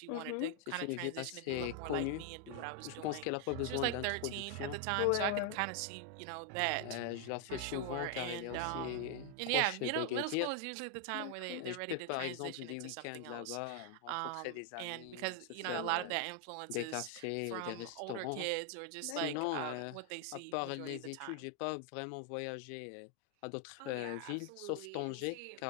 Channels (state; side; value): different; both; correlation 0.00